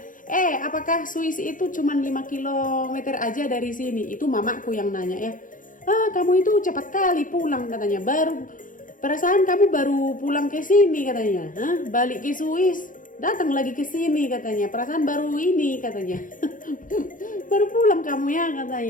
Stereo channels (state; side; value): late; right; 0.39 ms